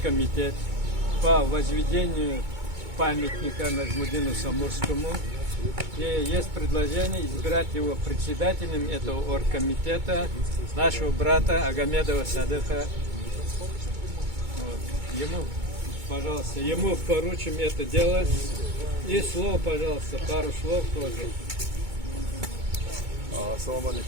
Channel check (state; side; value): late; left; 2.2 ms